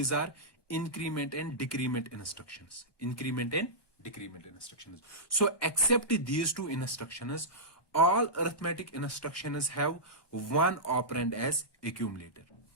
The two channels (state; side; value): late; right; 1.2 ms